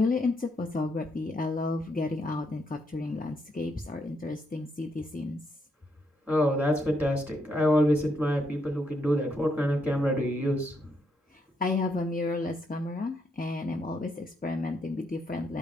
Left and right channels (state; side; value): normal; both; correlation 0.77